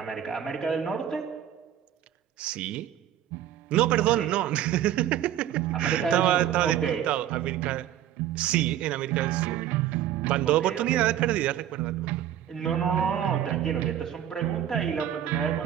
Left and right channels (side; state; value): left; quieter; 11.1 dB